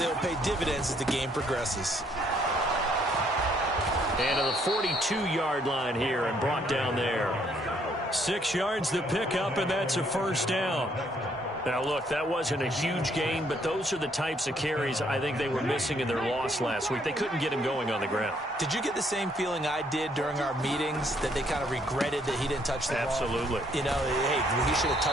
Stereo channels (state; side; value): normal; both; correlation 0.68